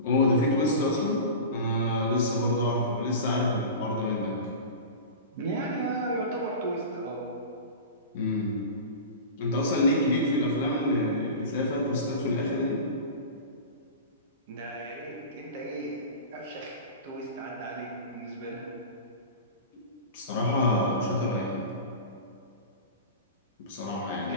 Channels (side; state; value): both; inverted; correlation -0.31